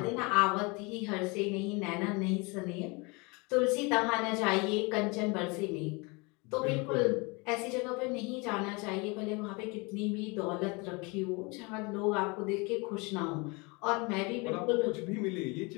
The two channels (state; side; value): quieter; right; 28.2 dB